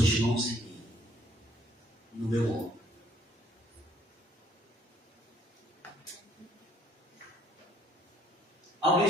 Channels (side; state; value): both; normal; correlation 0.63